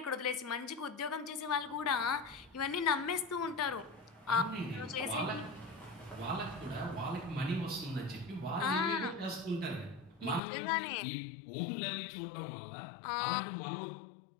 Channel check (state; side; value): drops out; right; at 10.4 s